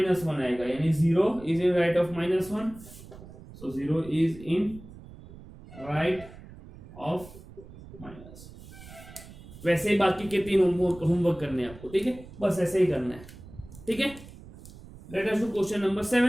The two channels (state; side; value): noise; right; rumble, 18 dB below the sound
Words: आएगा, यानी 0 is in right of -1, so 0 is in right of -1। वैसे ही बाकी के 3 होमवर्क करने हैं आपको। ठीक है, बस ऐसे ही करना है। ठीक है, late us do question number